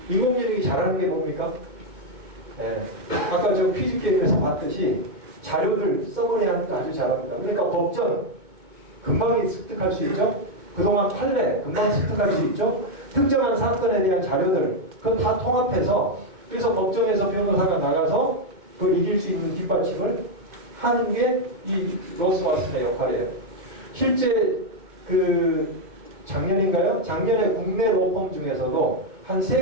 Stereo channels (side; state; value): left; late; 2.2 ms